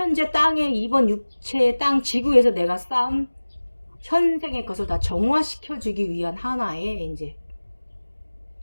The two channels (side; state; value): both; inverted; correlation -1.00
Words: 땅에 이번 육체의 땅 지구에서 내가 쌓은 현생의 것을 다 정화시켜주기 위한 하나의 이제